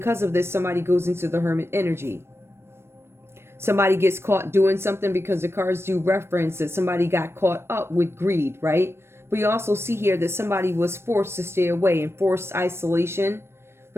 of this, somebody goes into the Hermit energy. Somebody gets caught doing something because the cards do reference that somebody got caught up with greed, right? But you also see here that somebody was forced to stay away in forced isolation.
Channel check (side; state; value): left; late; 0.12 ms